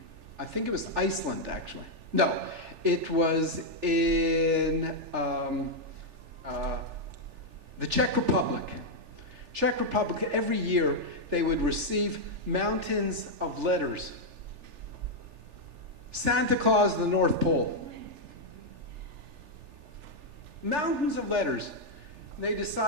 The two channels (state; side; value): late; left; 3.4 ms